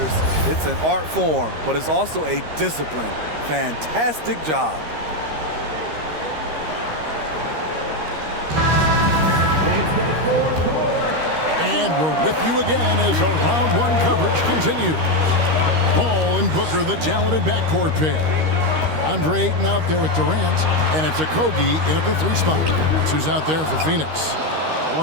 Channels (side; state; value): left; late; 13 ms